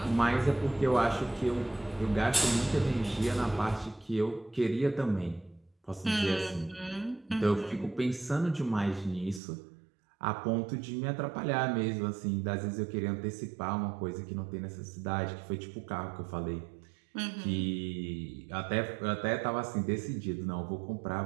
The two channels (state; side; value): drops out; left; at 9.4 s